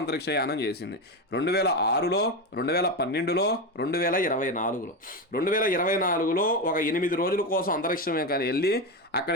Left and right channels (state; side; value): normal; both; correlation 0.15